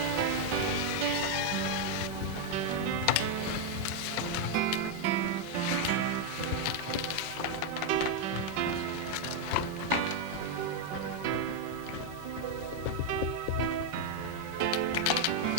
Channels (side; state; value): left; late; 5.4 ms